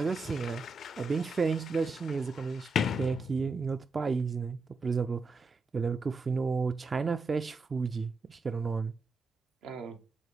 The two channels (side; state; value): left; quieter; 3.2 dB